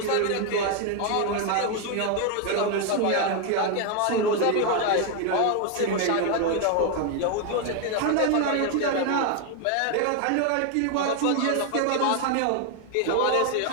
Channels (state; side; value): different; both; correlation 0.01